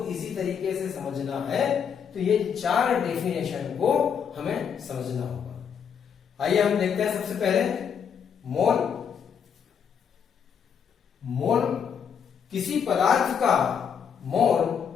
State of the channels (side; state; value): right; quieter; 7.4 dB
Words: इजी तरीके से समझना है तो ये चार डेफिनेशन को हमें समझना होगा। आइए हम देखते हैं। सबसे पहले मोल। मोल किसी पदार्थ का मोल